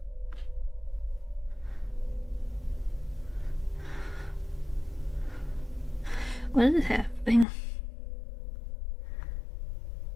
What is happening?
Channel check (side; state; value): right; drops out; at 7.5 s